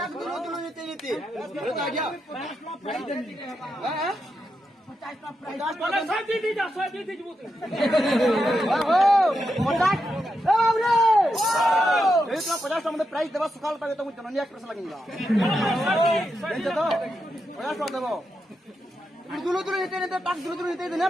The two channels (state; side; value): normal; both; correlation 0.85